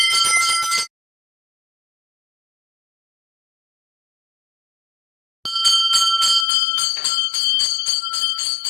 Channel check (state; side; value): drops out; right; at 6.5 s